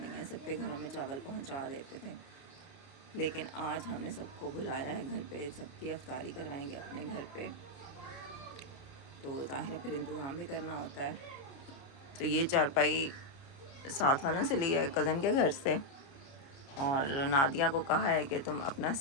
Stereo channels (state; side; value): late; right; 29 ms